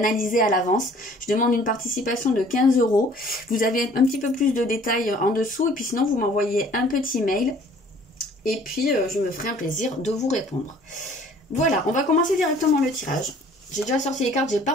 à l'avance. Je demande une participation de 15 €. Vous avez un petit peu plus de détails en dessous, et puis sinon vous m'envoyez un petit mail, et puis je me ferai un plaisir de vous répondre. Voilà, on va commencer directement le tirage. J'ai déjà sorti les cartes, j'ai pas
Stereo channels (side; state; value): both; normal; correlation 0.54